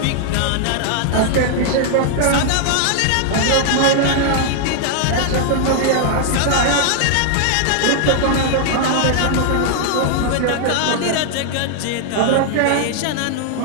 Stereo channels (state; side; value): different; both; correlation -0.01